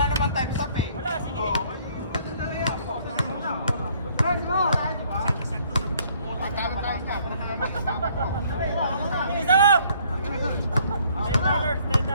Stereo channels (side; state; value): both; inverted; correlation -0.62